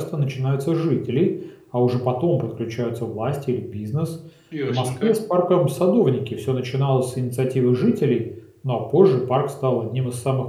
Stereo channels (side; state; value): both; identical; correlation 1.00